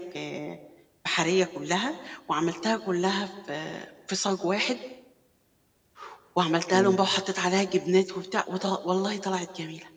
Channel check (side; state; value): both; identical; correlation 1.00